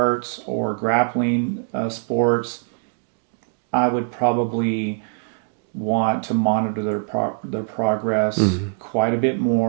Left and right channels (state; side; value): silent; left; digital silence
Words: or grappling sports, I would probably want to monitor their progress mm, quite a bit